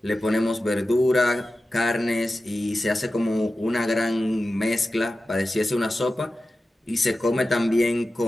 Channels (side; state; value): both; normal; correlation 0.94